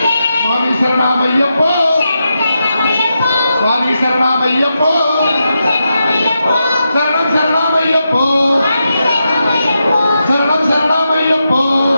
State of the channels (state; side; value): inverted; both; correlation -0.87